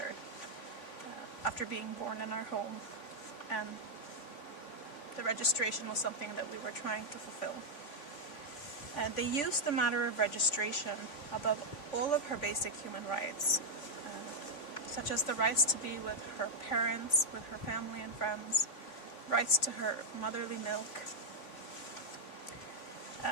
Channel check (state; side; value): late; right; 3.5 ms